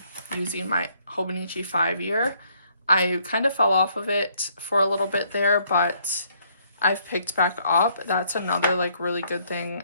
using my Hobonichi 5-year. I kind of fell off of it for a little bit there, but I've picked back up. That's another like really good thing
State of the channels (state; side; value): inverted; both; correlation -0.67